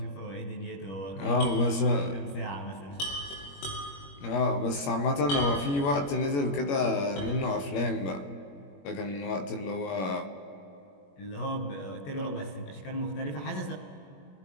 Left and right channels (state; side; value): late; right; 21 ms